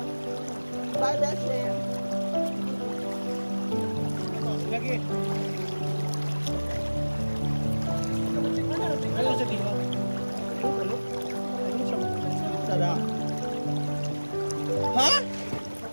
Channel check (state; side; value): inverted; both; correlation -1.00